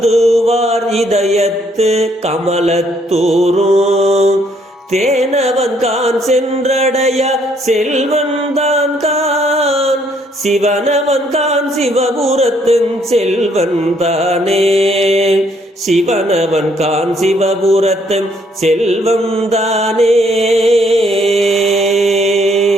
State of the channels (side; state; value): both; normal; correlation 0.68